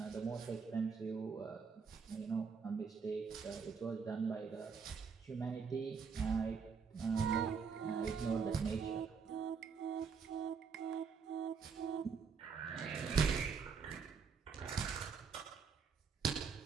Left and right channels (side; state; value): left; quieter; 5.8 dB